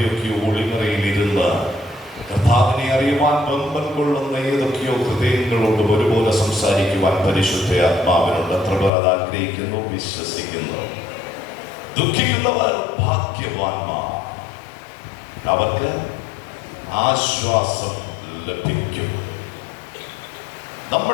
ഒളിമറയിലിരുന്ന് കർത്താവിനെ അറിയുവാൻ ബന്ധം കൊള്ളുന്ന ഏതൊക്കെയോ ഹൃദയങ്ങളോടും ഒരുപോലെ സംസാരിക്കുവാൻ പരിശുദ്ധ ആത്മാവിനോട് എത്ര പേർ അത് ആഗ്രഹിക്കുന്നു, വിശ്വസിക്കുന്നു. ദുഃഖിക്കുന്നവർ ഭാഗ്യവാന്മാർ, അവർക്ക് ആശ്വാസം ലഭിക്കും.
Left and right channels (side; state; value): right; drops out; at 8.9 s